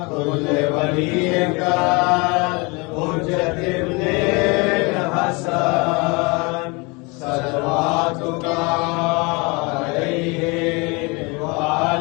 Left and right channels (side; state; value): right; quieter; 28.2 dB